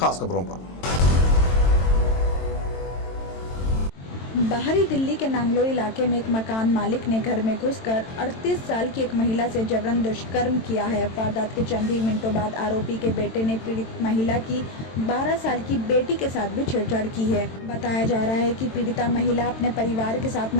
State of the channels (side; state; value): right; late; 22 ms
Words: खबरों पर। बाहरी दिल्ली के नांगलो इलाके में एक मकान मालिक ने घर में घुसकर 38 साल की एक महिला से जबरन दुष्कर्म किया है। वारदात के चंद ही मिनटों बाद आरोपी के बेटे ने पीड़ित महिला की 12 साल की बेटी के साथ भी छेड़छाड़ की है। बताया जा रहा है कि पीड़िता महिला अपने परिवार के साथ